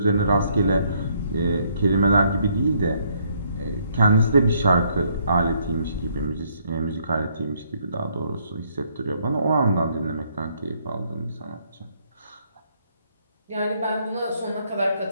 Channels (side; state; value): both; inverted; correlation -0.69